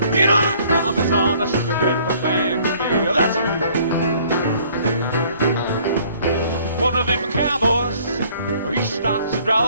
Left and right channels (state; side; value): inverted; both; correlation -0.58